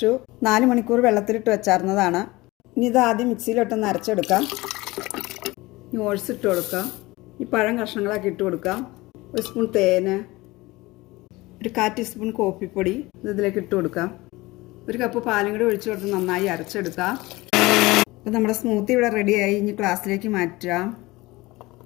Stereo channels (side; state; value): right; quieter; 20.9 dB